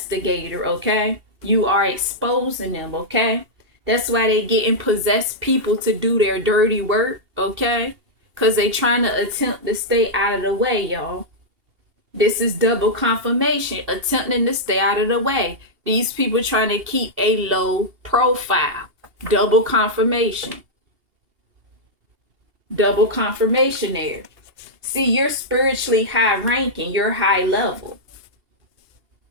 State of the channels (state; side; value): late; left; 2.8 ms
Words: Okay, you are exposing them. Okay, that's why they getting possessed people to do their dirty work. Okay, because they trying to attempt to stay out of the way, y'all. This is double confirmation, attempting to stay out of the way. These people trying to keep a low profile. Double confirmation. Double confirmation there. See, you're spiritually high ranking. You're high level.